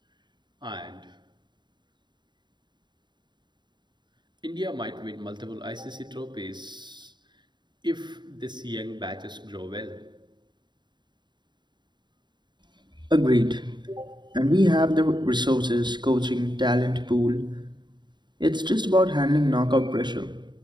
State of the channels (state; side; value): late; left; 0.22 ms